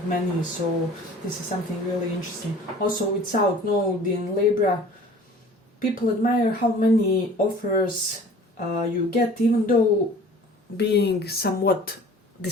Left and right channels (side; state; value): both; normal; correlation 0.47